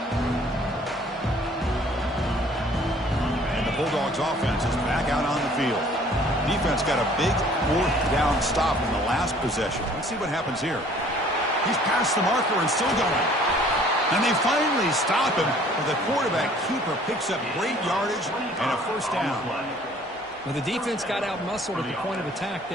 And the Bulldogs offense is back out on the field. Defense got a big 4th down stop in the last possession. Let's see what happens here. He's past the marker and still going. And they finally stop him, but the quarterback keeper picks up great yardage and a 1st down. Well, the defense got out-muscled at the point of attack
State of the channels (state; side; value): normal; both; correlation 0.55